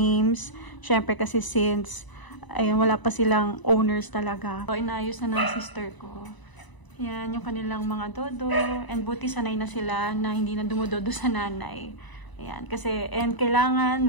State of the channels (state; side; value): late; right; 1.0 ms